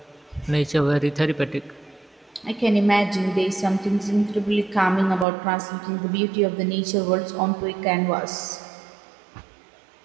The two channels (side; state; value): left; drops out; at 5.2 s